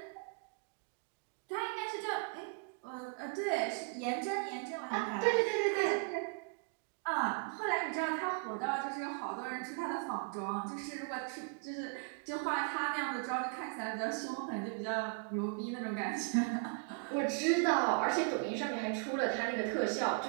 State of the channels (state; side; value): quieter; left; 38.4 dB